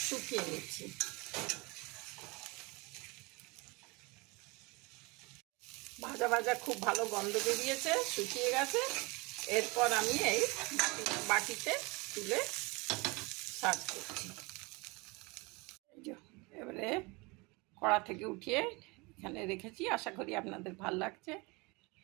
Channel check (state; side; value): quieter; left; 26.6 dB